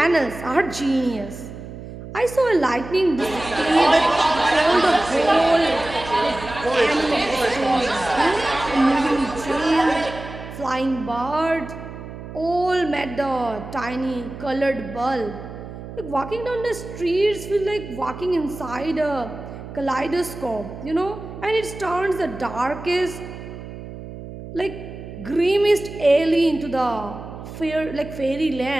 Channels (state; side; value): noise; right; hum, 12 dB below the sound